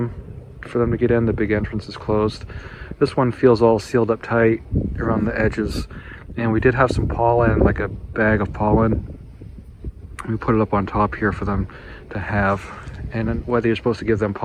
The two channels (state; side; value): identical; both; correlation 1.00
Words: for them to get in. The big entrance is closed. This one feels all sealed up tight around the edges, and we did have some pollen, like a bag of pollen. We put it up on top here for them to have, and then whether you're supposed to give them